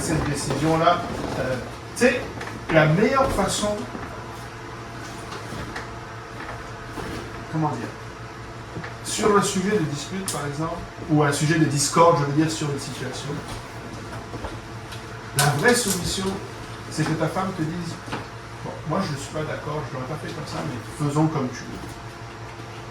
décision-là, tu sais, la meilleure façon, comment dire, sur un sujet de dispute par exemple, ou un sujet de discorde, je veux dire, sur une situation, la vraie soumission, c'est que ta femme te dise, bon, moi je ne suis pas d'accord, je ne l'aurais pas fait comme ça, mais faisons comme tu veux.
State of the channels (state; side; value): identical; both; correlation 1.00